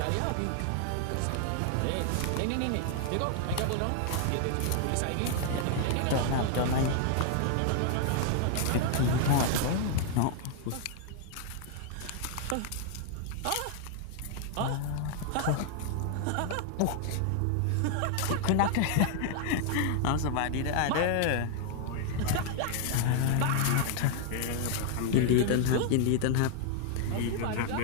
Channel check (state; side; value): different; both; correlation 0.00